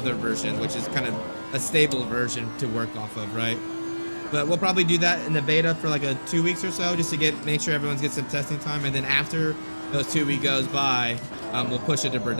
version, which is kind of a stable version to work off of, right? But we'll probably do that in the beta for like 2 weeks or so, just to make sure everyone's get some testing time. And then after those 2 weeks goes by, we'll push it to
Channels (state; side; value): inverted; both; correlation -1.00